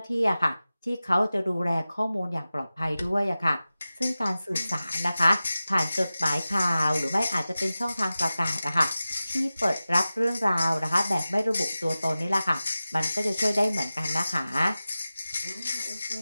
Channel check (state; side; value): inverted; both; correlation -0.96